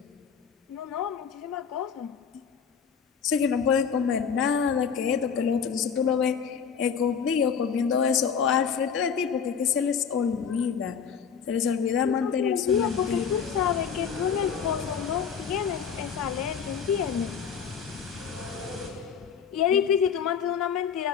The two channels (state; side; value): quieter; right; 7.0 dB